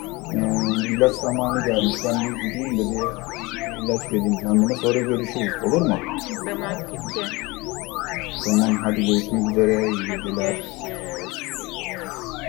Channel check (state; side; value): quieter; right; 23.8 dB